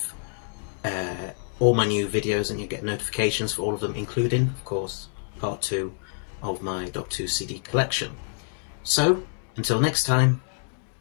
all my new videos and you get notifications for all of them, including, of course, part 2 of my Doctor Who CD collection. So, until next time,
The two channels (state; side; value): silent; right; digital silence